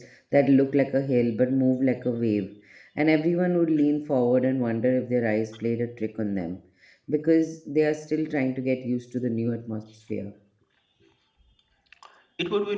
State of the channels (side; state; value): both; identical; correlation 1.00